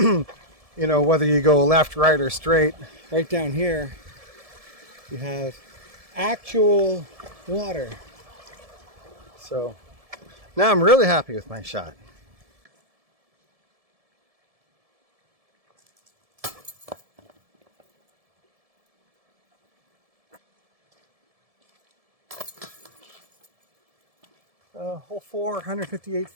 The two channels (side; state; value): left; late; 1.7 ms